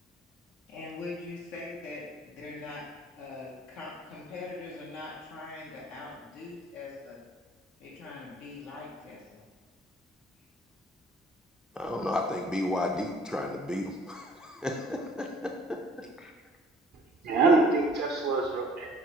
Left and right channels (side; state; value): both; normal; correlation 0.54